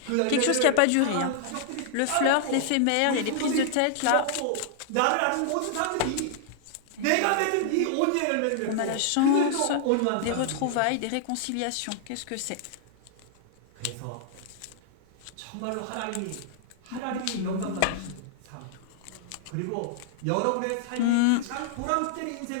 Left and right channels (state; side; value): different; both; correlation -0.01